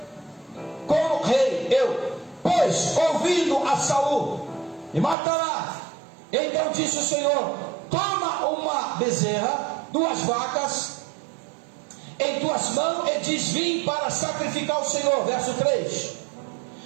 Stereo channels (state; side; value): drops out; left; at 5.2 s